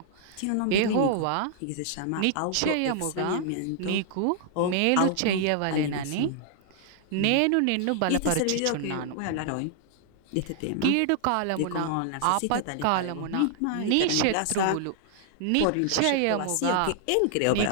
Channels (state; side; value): different; both; correlation -0.01